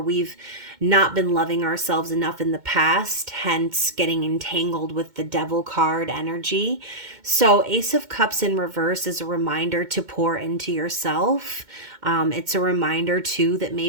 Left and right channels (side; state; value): left; late; 2.2 ms